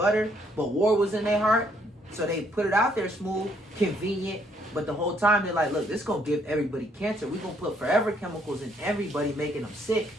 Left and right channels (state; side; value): normal; both; correlation 0.68